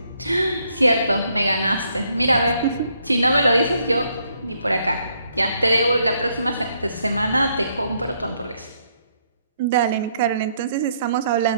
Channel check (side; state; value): both; inverted; correlation -0.72